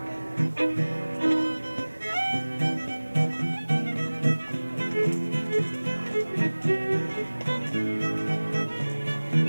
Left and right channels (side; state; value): both; inverted; correlation -1.00